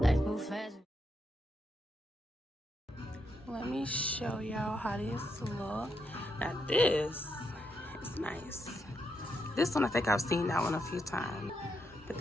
Life move fast. Let me show y'all how this look. Now this is nice. This one, I think I've seen that one a few times, but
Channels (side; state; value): both; normal; correlation 0.81